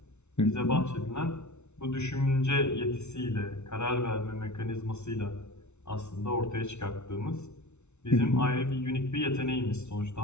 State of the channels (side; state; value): right; late; 0.82 ms